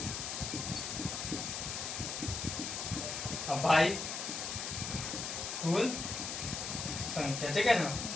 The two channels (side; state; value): left; noise; hiss, 4 dB below the sound